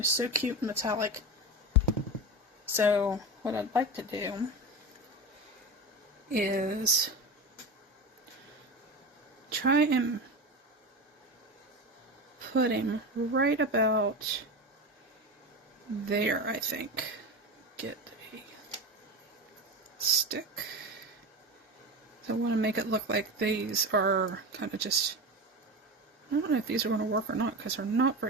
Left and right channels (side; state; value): both; normal; correlation 0.24